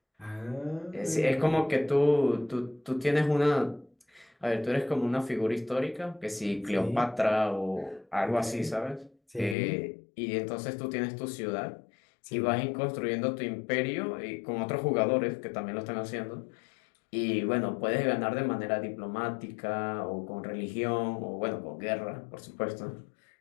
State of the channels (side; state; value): right; drops out; at 9.6 s